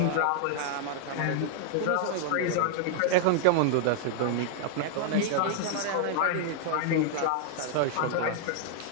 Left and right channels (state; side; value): different; both; correlation -0.01